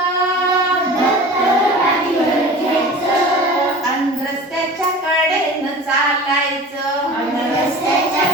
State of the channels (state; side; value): normal; both; correlation 0.38